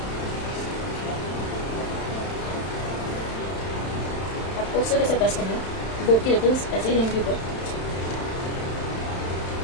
आपको सिर्फ ऐसे प्रेस करना है, बोर्ड की रिबन्स ऐसे ही रहेंगी ऊपर।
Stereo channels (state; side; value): late; right; 31 ms